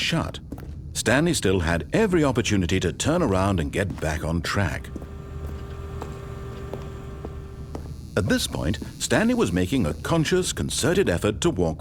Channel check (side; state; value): both; identical; correlation 1.00